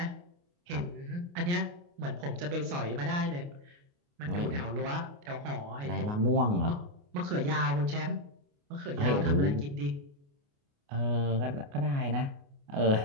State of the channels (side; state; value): left; late; 28 ms